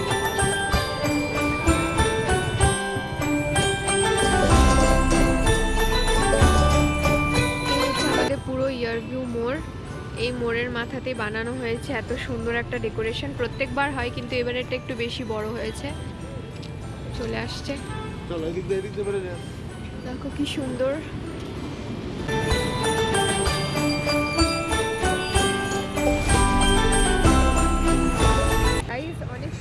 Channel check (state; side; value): identical; both; correlation 1.00